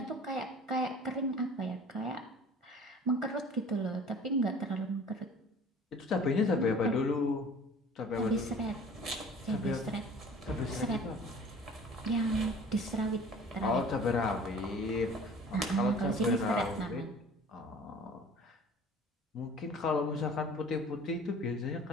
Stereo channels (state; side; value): normal; both; correlation 0.47